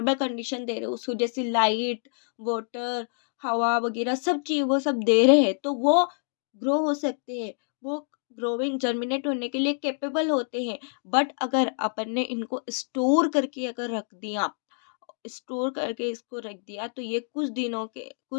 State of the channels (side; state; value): right; silent; digital silence